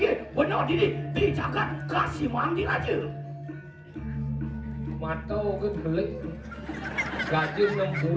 benar diri dijaga kasih mandi aja. Mata kan belik. Gaji 6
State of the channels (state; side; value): identical; both; correlation 1.00